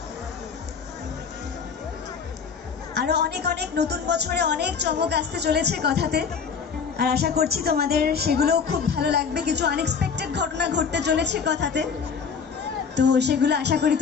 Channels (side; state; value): right; quieter; 6.1 dB